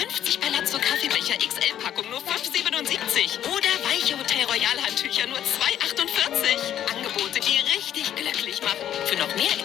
Palazzo Kaffeebecher XL-Packung nur 5,77. Oder weiche Hotel Royal Handtücher nur 2,48. Angebote, die richtig glücklich machen. Für noch mehr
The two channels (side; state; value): right; quieter; 10.7 dB